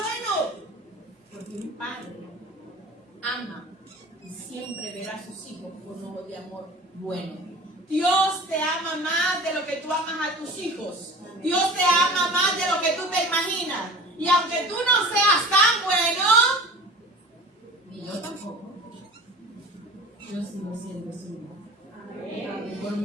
Porque un padre ama y siempre verá a sus hijos con ojos de amor bueno. Dios te ama más de lo que tú amas a tus hijos. Dios te ama más de lo que tú te imaginas. Y aunque tú no seas tan bueno, ni yo tampoco, yo sigo siendo suyo. Por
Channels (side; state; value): both; normal; correlation 0.40